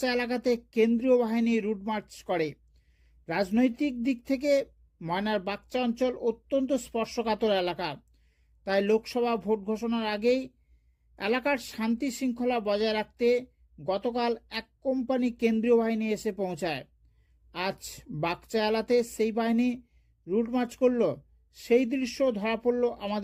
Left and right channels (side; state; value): both; identical; correlation 1.00